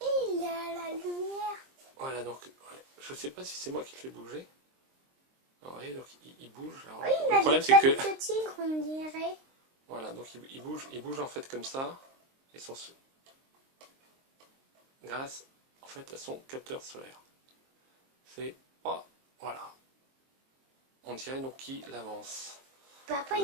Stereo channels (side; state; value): left; late; 23 ms